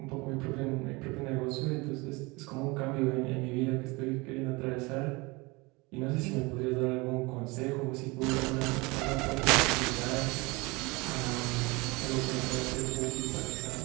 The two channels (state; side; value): quieter; left; 25.1 dB